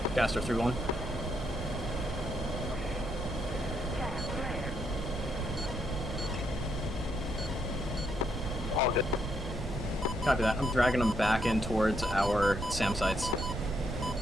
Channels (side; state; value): right; noise; rumble, 6 dB below the sound